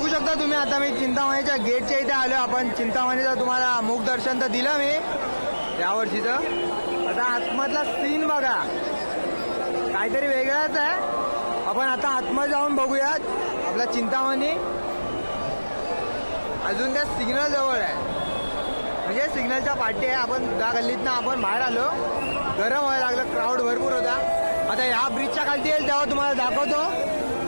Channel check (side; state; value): both; inverted; correlation -1.00